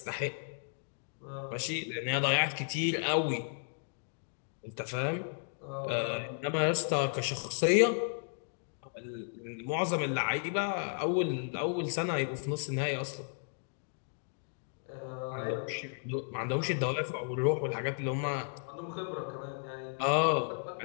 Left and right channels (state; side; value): silent; right; digital silence